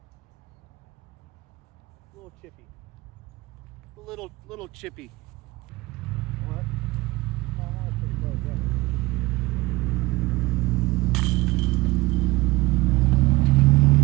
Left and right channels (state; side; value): quieter; left; 21.2 dB